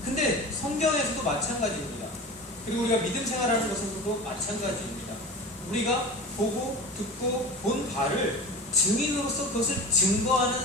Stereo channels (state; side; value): normal; both; correlation 0.33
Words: 근데 성경에서도 마찬가지입니다. 그리고 우리가 믿음 생활하는 것에서도 마찬가지입니다. 우리가 보고 듣고 본 바를 증인으로서 그것을